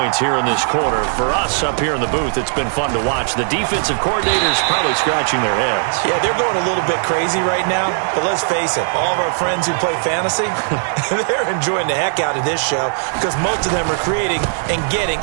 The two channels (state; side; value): silent; left; digital silence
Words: here in this quarter. For us up here in the booth, it's been fun to watch. The defensive coordinators probably scratching their heads. Yeah, they're going a little bit crazy right now. But let's face it, all of our friends who play fantasy, they're enjoying the heck out of this show because most of them are creating and getting